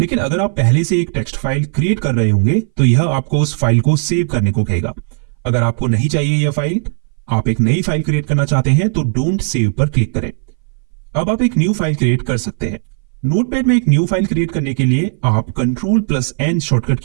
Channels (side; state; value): left; silent; 61 dB below the other